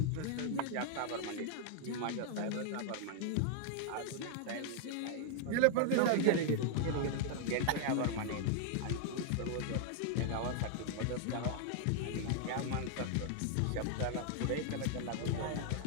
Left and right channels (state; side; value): different; both; correlation 0.00